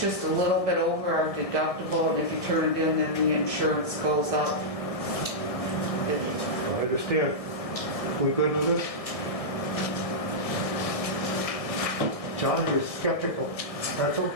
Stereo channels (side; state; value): right; late; 1.6 ms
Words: just a little bit over our deductible, and if you turn it in, then the insurance goes up. I understand. We good with this? John, you're skeptical. That's